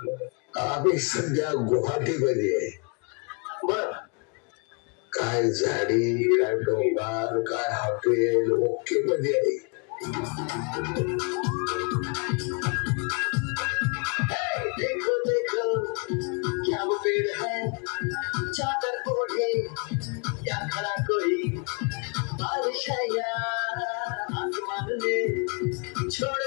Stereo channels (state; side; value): quieter; right; 35.3 dB